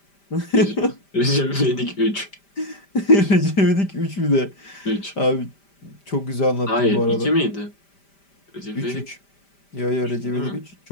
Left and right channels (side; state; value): right; late; 5.1 ms